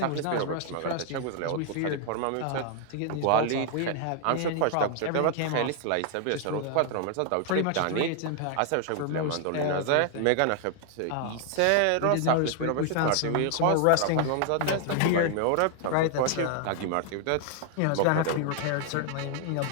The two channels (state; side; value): different; both; correlation 0.00